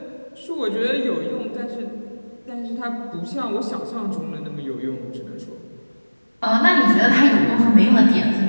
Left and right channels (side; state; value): both; inverted; correlation -1.00